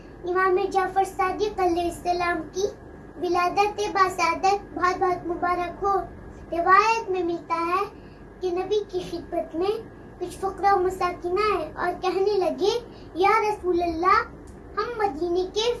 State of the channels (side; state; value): both; identical; correlation 1.00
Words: امام جعفر صادق علیہ السلام کی ولادت باسعادت بہت بہت مبارک ہو. روایت میں ملتا ہے کہ نبی کی خدمت میں کچھ فقراء و مساکین آئے اور کہنے لگے یا رسول اللہ ہم مدینے کے